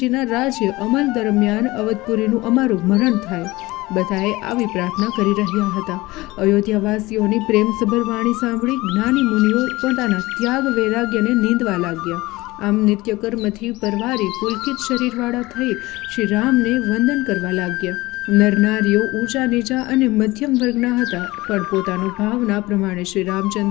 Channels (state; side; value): quieter; right; 20.2 dB